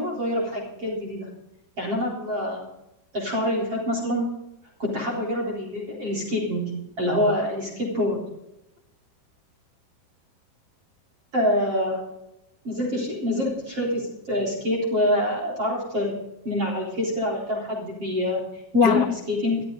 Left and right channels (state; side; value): late; left; 7.5 ms